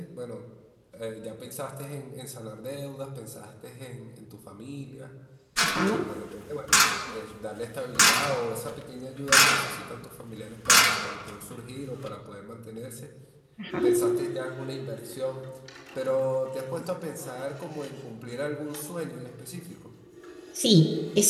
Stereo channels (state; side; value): identical; both; correlation 1.00